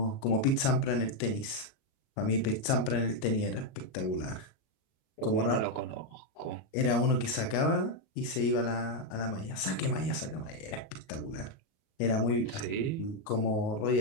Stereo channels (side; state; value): right; late; 38 ms